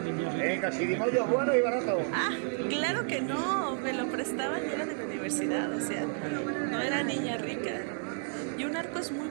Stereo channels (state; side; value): silent; left; 57 dB below the other